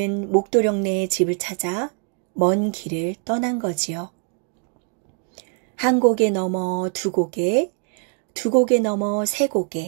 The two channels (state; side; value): quieter; left; 37.2 dB